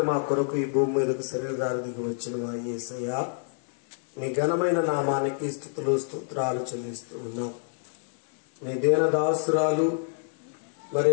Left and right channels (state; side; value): silent; right; digital silence